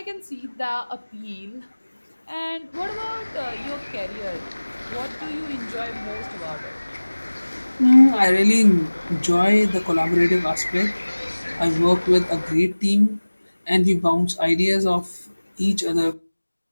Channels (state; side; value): inverted; both; correlation -1.00